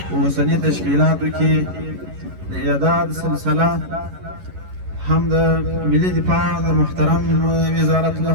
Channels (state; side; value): late; left; 11 ms